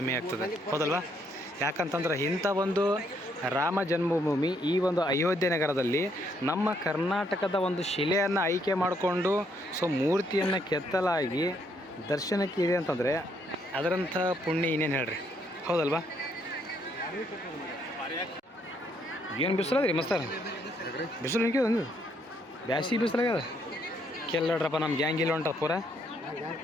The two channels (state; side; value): normal; both; correlation 0.72